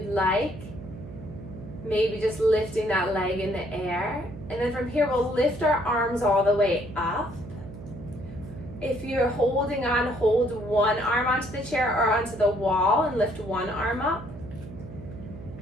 like. Maybe just lifting that leg in the air. And then from here, we'll lift our arms all the way up. If you're holding on, hold one arm onto the chair or onto the wall and lift one arm up.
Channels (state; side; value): noise; right; hum, 13 dB below the sound